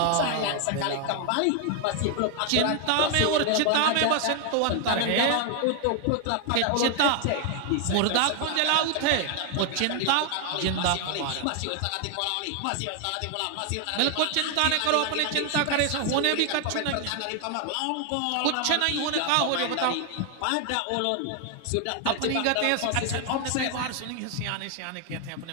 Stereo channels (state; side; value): different; both; correlation 0.00